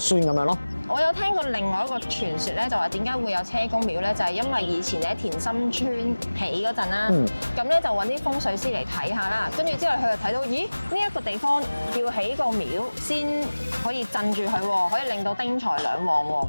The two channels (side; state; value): both; inverted; correlation -1.00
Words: 咁樣咯。我有聽過另外一個傳說咧，就話點解會有車公廟咧？就係因為以前喺田心村起嗰陣啦，咁咧就揾啲風水師嚟睇下啦，跟住之後佢就睇到，咦呢一個地方要起個廟先可以鎮住佢喎，可以令到丁財兩旺喎